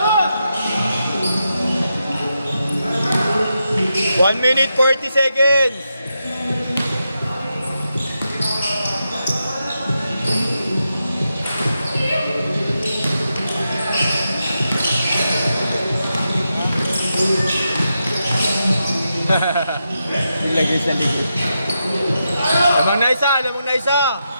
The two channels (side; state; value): both; inverted; correlation -0.86